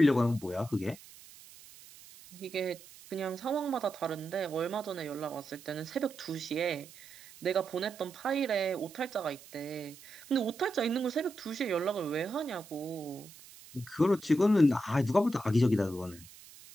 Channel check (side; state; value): right; noise; hiss, 20 dB below the sound